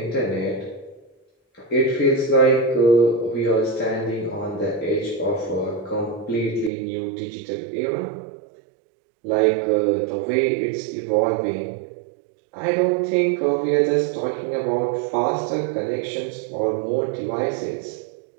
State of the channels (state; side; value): drops out; left; at 6.7 s